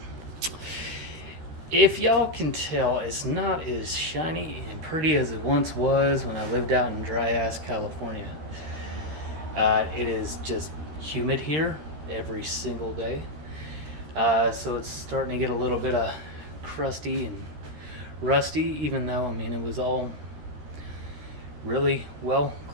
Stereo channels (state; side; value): late; left; 13 ms